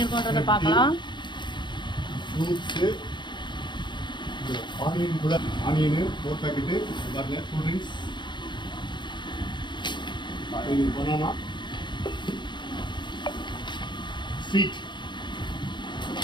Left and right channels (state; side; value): late; right; 0.22 ms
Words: பார்க்கலாம். ஃப்ரூட்ஸு, ஆனியன் கூட ஆனியனு 4 பேக்கெட்டு பாருங்க. Cool drinks, banana, sweet,